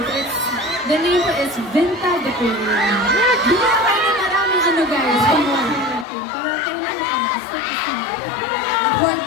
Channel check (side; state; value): right; drops out; at 6.1 s